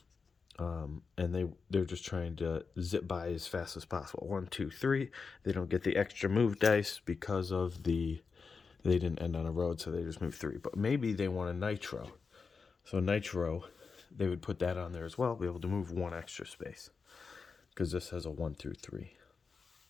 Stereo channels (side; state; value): right; quieter; 5.0 dB